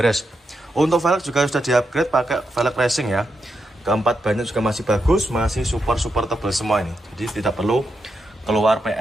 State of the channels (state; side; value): normal; both; correlation 0.84